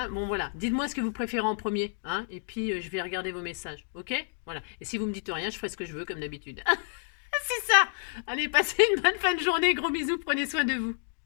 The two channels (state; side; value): silent; right; digital silence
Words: bon voilà, dites-moi ce que vous préférez en premier, hein, et puis je vais regarder vos messages, ok? Voilà, et si vous me dites rien, je ferai ce que je veux comme d'habitude. C'est ça. Allez, passez une bonne fin de journée, gros bisous, prenez soin de vous.